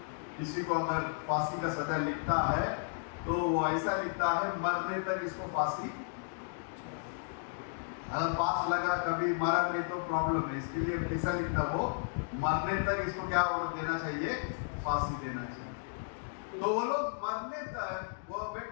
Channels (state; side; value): silent; right; digital silence